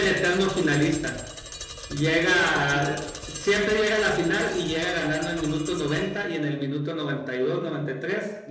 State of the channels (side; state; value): both; identical; correlation 1.00